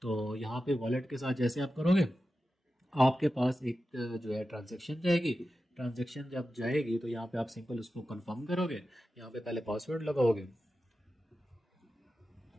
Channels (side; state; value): both; normal; correlation 0.92